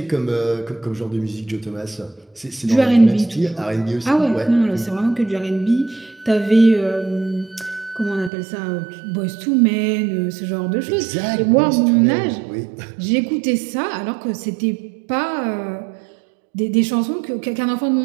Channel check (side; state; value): left; drops out; at 8.3 s